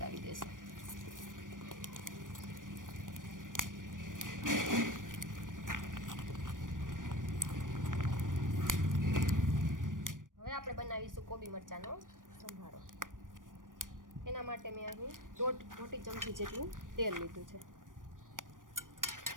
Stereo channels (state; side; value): late; left; 0.88 ms